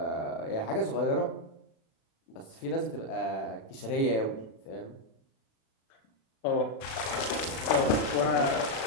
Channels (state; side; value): late; right; 36 ms